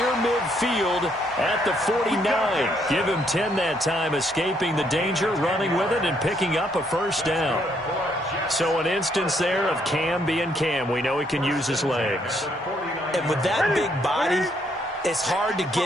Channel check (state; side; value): normal; both; correlation 0.71